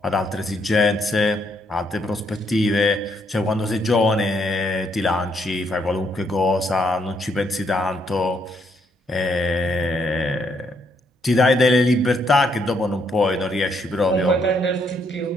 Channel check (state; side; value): normal; both; correlation 0.73